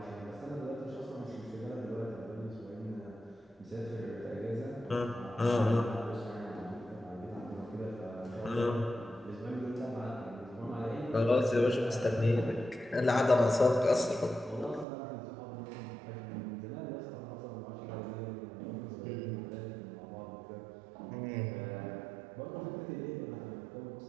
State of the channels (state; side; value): drops out; left; at 14.9 s